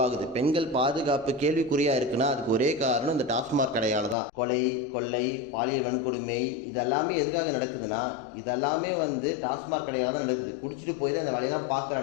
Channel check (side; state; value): right; drops out; at 4.2 s